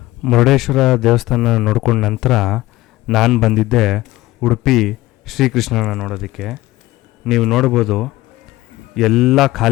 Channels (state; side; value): quieter; right; 17.9 dB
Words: ಮುರುಡೇಶ್ವರ ದೇವಸ್ಥಾನ ನೋಡ್ಕೊಂಡ ನಂತರ ನಾನು ಬಂದಿದ್ದೆ ಉಡುಪಿ ಶ್ರೀಕೃಷ್ಣನ ನೋಡೋದಕ್ಕೆ. ನೀವು ನೋಡ್ಬೋದು ಎಲ್ಲ